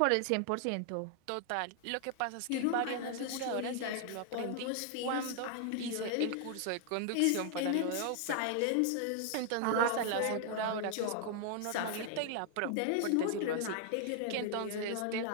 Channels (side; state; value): both; different; correlation 0.00